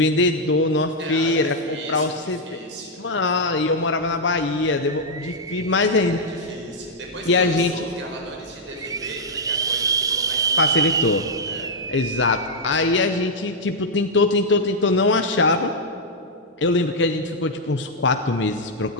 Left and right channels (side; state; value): both; normal; correlation -0.04